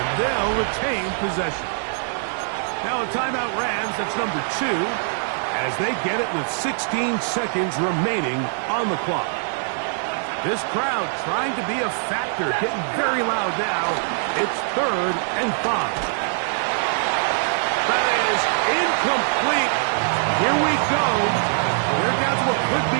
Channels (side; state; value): left; silent; digital silence